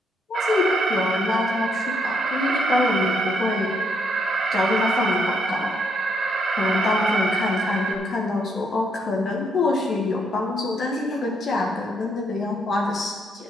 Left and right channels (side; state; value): both; normal; correlation 0.73